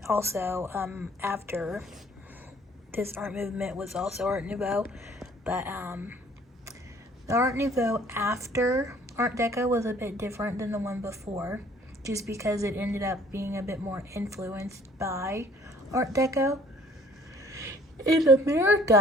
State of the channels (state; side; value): normal; both; correlation 0.57